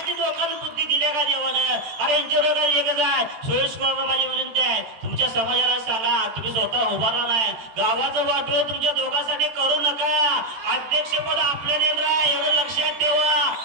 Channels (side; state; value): left; late; 14 ms